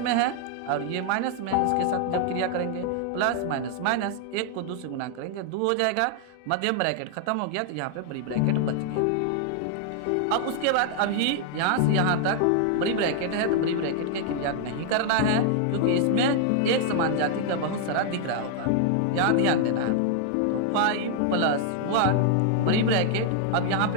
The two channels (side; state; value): both; different; correlation 0.00